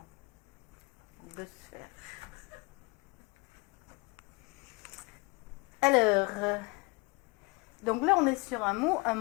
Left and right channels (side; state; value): right; quieter; 26.9 dB